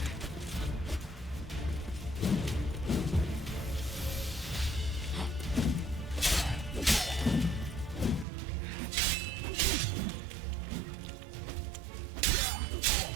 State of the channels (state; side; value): drops out; left; at 8.2 s